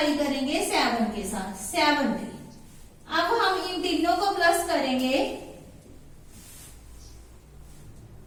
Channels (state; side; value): identical; both; correlation 1.00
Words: करेंगे 7 के साथ, 70। अब हम इन तीनों को प्लस करेंगे,